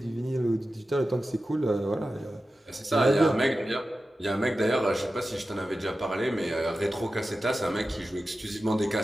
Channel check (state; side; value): normal; both; correlation 0.93